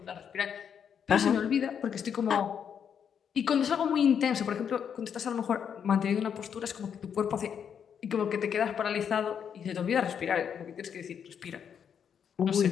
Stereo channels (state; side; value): quieter; right; 7.8 dB